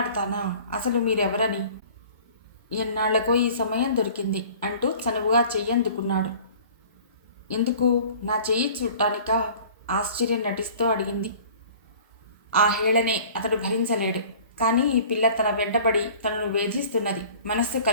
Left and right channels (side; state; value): both; inverted; correlation -0.47